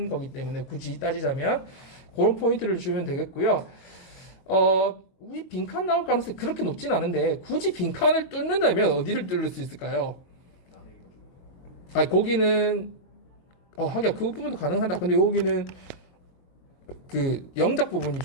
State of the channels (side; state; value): right; late; 22 ms